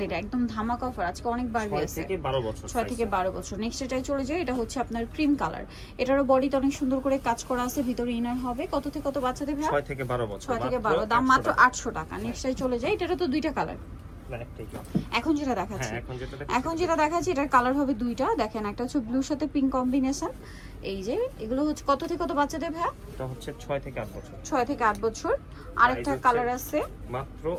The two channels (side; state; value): both; identical; correlation 1.00